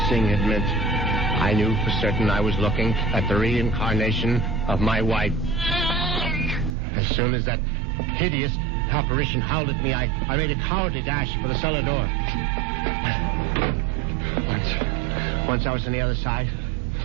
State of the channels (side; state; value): left; drops out; at 6.8 s